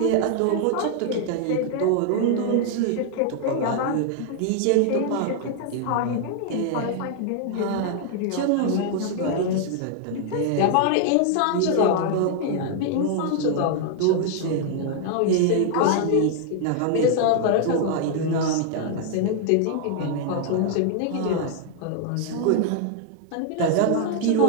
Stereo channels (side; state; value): both; different; correlation 0.00